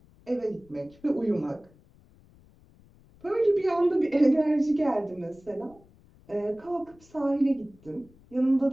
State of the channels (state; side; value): noise; left; rumble, 28 dB below the sound